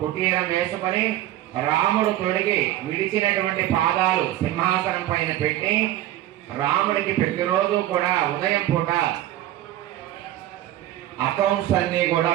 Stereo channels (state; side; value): quieter; left; 13.9 dB